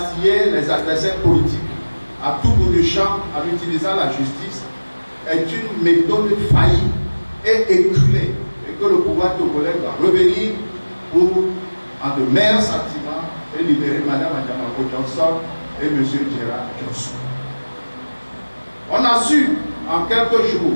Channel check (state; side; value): inverted; both; correlation -1.00